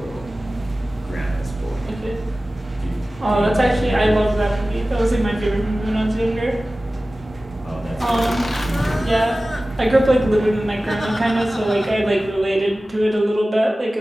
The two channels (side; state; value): both; normal; correlation 0.96